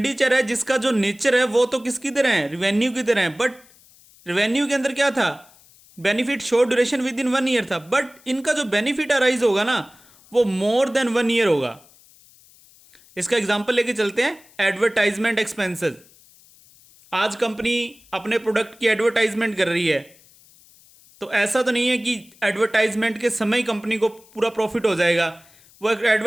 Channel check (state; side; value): noise; left; hiss, 27 dB below the sound